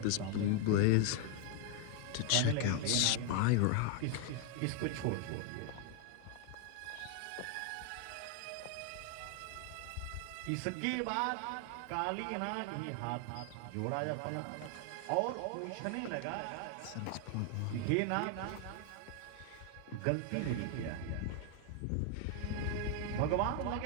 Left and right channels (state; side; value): different; both; correlation 0.01